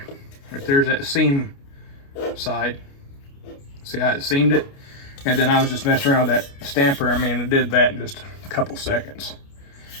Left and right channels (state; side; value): late; right; 29 ms